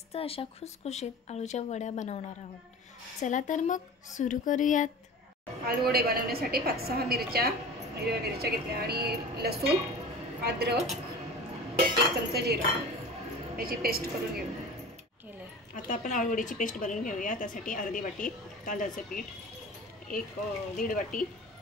अशा खुसखुशीत आळूच्या वड्या बनवणार आहोत। चला तर मग सुरू करूयात। आलू वडे बनवण्यासाठी 5-6 मिरच्या, हिरव्या मिरच्या घेतल्या आणि लसूण, अद्रक, 1 चमचा जिरा याची पेस्ट करून घेऊ। आता आपण आळूवडीची पेस्ट बनवून घेऊया। त्यासाठी अर्धी वाटी तांदळाचं पीठ, 1-1.5 वाटी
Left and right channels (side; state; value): both; normal; correlation 0.37